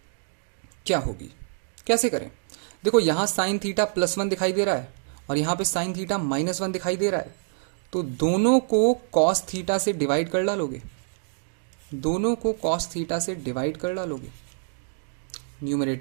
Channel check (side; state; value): left; silent; digital silence